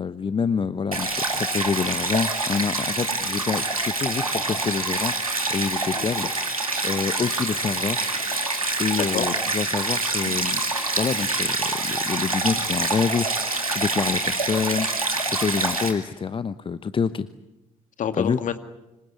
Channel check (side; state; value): both; normal; correlation 0.29